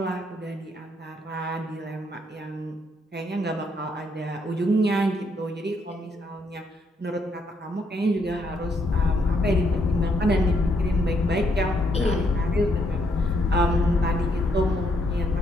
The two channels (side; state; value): both; normal; correlation 0.74